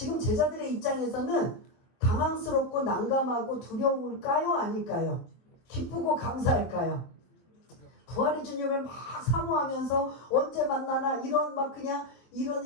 제자들의 입장에서는 당황스럽고 난감하고 두려울까요? 아닐까요? 기쁘고 감사할까요? 부활의 주님을 막 사모하면서 언제 만나나 이런 막 그냥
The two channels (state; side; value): late; right; 23 ms